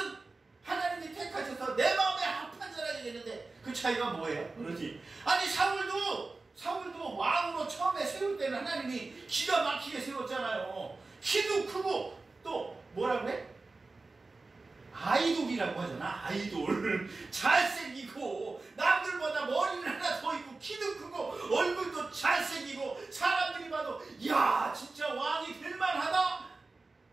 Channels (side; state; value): left; quieter; 3.6 dB